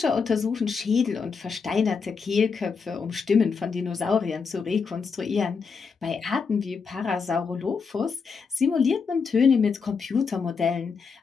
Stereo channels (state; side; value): quieter; right; 5.4 dB